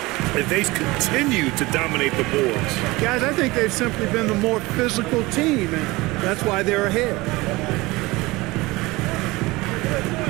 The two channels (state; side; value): quieter; left; 21.5 dB